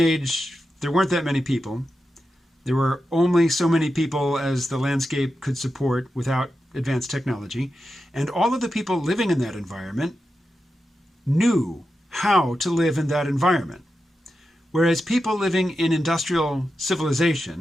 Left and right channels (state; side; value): normal; both; correlation 0.90